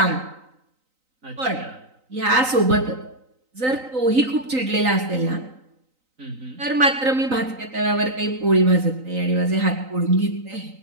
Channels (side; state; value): left; late; 3.9 ms